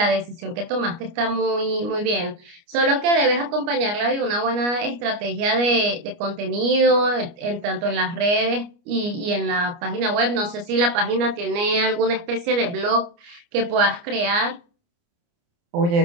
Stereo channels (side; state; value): left; late; 29 ms